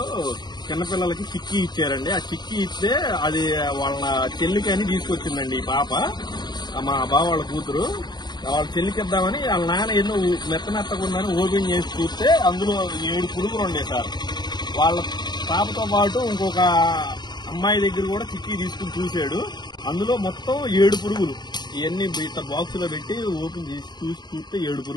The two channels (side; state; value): right; late; 0.21 ms